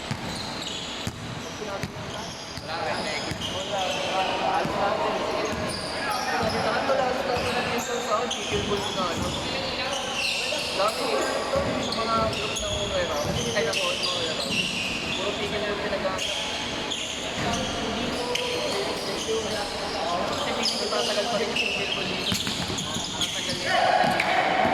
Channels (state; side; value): identical; both; correlation 1.00